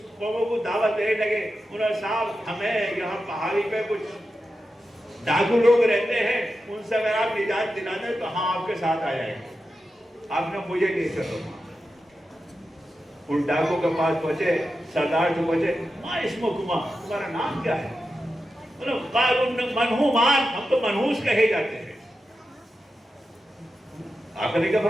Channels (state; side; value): normal; both; correlation 0.90